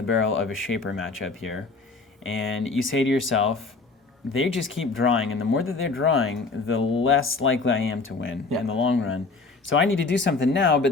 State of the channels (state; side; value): quieter; right; 3.9 dB